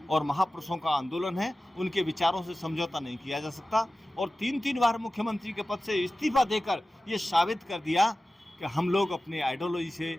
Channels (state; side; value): normal; both; correlation 0.95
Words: और महापुरुषों का आंदोलन है, उनके विचारों से समझौता नहीं किया जा सकता। और 3 बार मुख्यमंत्री के पद से इस्तीफा देकर ये साबित कर दिया कि हम लोग अपने आइडियोलॉजी से,